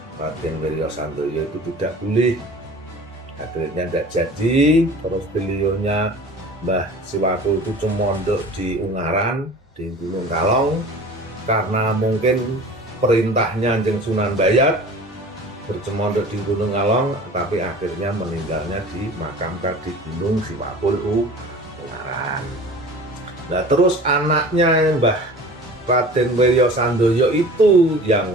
Wirya Sandoyo itu tidak boleh. Akhirnya tidak jadi. Terus beliaunya Mbah Siwakul itu cumondok di Ungaran di Gunung Kalong, karena mungkin perintahnya Jeng Sunan Dayat bercemondok di Gunung Kalong, tapi akhirnya meninggalnya dimakamkan di Gunung Siwakul Ungaran. Nah terus anaknya Mbah Raden Wirya Sandoyo itu yang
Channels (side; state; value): both; normal; correlation 0.41